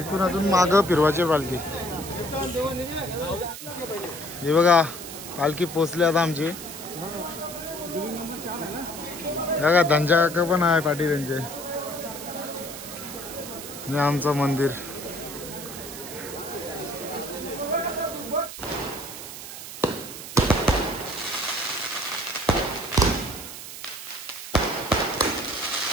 अजून माग फिरवायची पालखी. हे बघा पालखी पोचली आता आमची. बघा धनजा काका पण आहे पाठी त्यांचे. हे आमचं मंदिर.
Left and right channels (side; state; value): right; noise; hiss, 11 dB below the sound